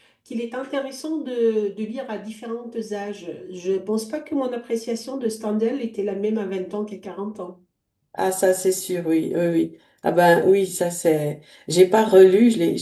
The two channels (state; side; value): identical; both; correlation 1.00